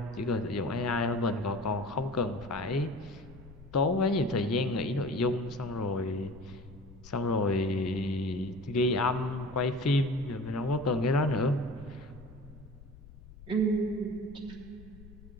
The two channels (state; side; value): noise; left; rumble, 19 dB below the sound